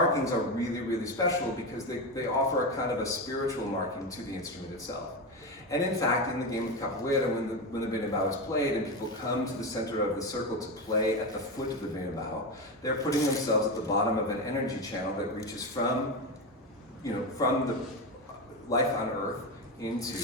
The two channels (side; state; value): both; normal; correlation 0.16